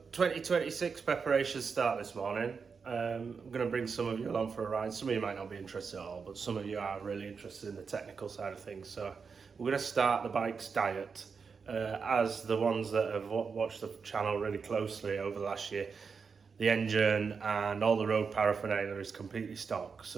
2026 preparations start this morning. I'm going to bring some of you along for a ride. Some of you might not be interested at all, but some of you are really interested in the technical side of things. So we're going to start the bike's diet. As the ones that have watched the channel really closely over the last year, the engine and all the road paraphernalia is completely stock.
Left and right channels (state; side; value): quieter; left; 5.5 dB